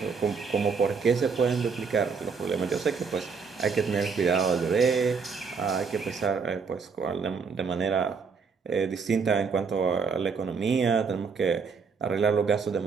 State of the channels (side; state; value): left; quieter; 5.4 dB